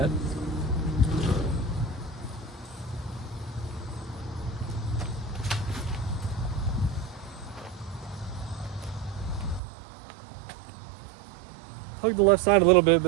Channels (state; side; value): drops out; left; at 9.6 s